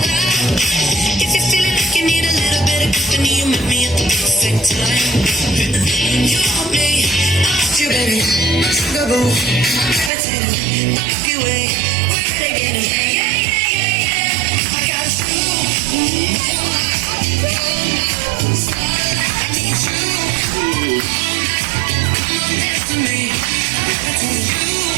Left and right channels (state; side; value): drops out; left; at 10.1 s